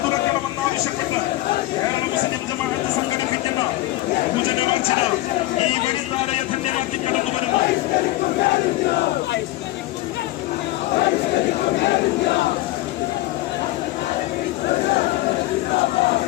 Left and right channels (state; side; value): quieter; right; 17.5 dB